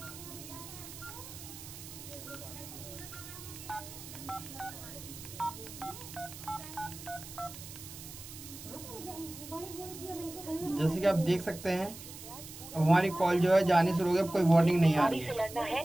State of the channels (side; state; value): right; noise; hiss, 13 dB below the sound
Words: जैसे कि आप देख सकते हैं अब हमारी कॉल जो है जानी शुरू हो गई, अब कोई वार्निंग नहीं आ रही है।